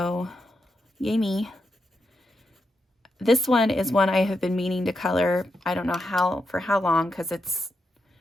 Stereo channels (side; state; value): both; normal; correlation 0.85